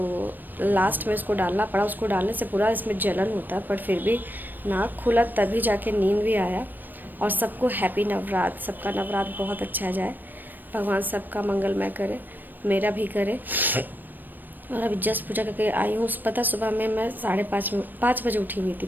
लास्ट में इसको डालना पड़ा। उसको डालने से पूरा इसमें जलन होता है, पर फिर भी नाक खुला तभी जाके नींद भी आया। और सबको हैप्पी नवरात्र, सबका नवरात्र बहुत अच्छा जाए, भगवान सबका मंगलमय करे, मेरा भी करे। और अभी जस्ट पूजा करके आई हूँ। पता सुबह में मैं 5:30 बजे उठी हुई थी।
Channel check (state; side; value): late; left; 0.091 ms